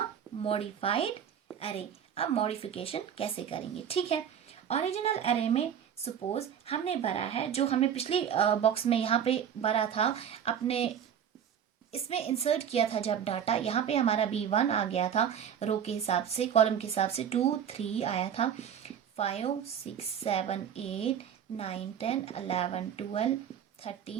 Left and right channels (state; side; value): quieter; left; 8.6 dB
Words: मॉडिफाइड एरे। अब मॉडिफिकेशन कैसे करेंगे, ठीक है। ओरिजिनल एरे में सपोज हमने भरा है, जो हमें पिछली बॉक्स में यहाँ पे भरा था, अपने इसमें इंसर्ट किया था जब डाटा, यहाँ पे हमारा B1 आ गया था रो के हिसाब से, कॉलम के हिसाब से 2 3 आया था, 5 6 7 8 9 10 11 12